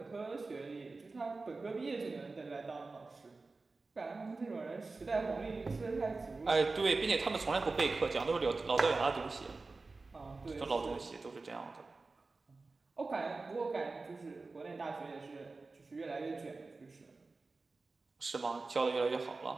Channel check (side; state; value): left; quieter; 3.7 dB